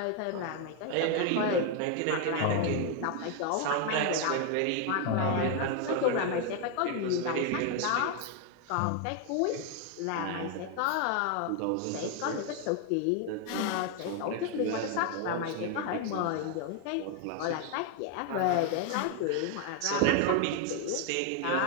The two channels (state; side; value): different; both; correlation 0.01